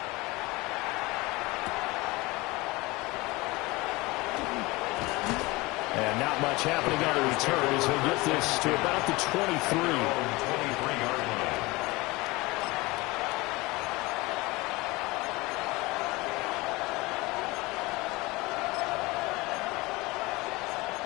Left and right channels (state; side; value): quieter; right; 22.6 dB